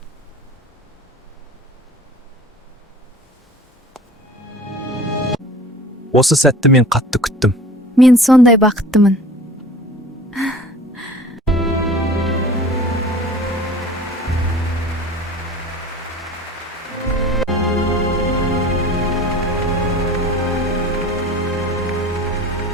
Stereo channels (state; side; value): normal; both; correlation 0.43